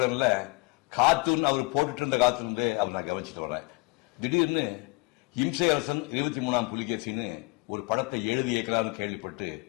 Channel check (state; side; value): quieter; right; 28.2 dB